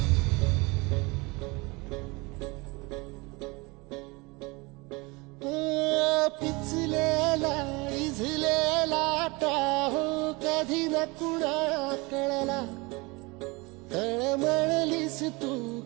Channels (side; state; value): left; quieter; 25.8 dB